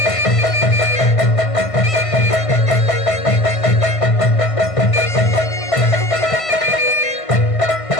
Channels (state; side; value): late; right; 1.5 ms